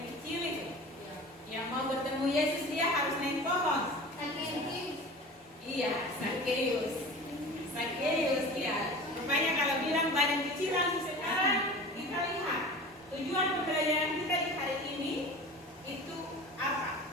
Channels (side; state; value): both; normal; correlation 0.37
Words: kecil itu, yang mau bertemu Yesus dia harus naik pohon. Iya, Sakeus ya. Rupanya kalau bilang badan kecil langsung sekarang kita lihat tujuan pembelajaran kita di hari ini itu apa?